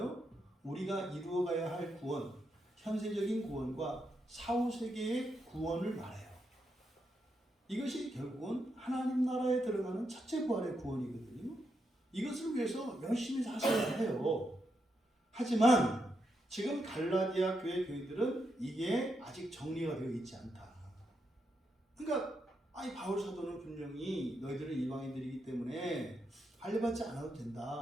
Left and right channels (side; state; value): both; normal; correlation 0.82